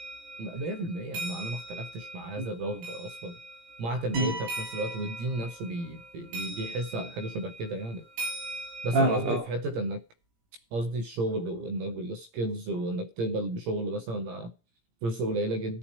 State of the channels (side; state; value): left; late; 17 ms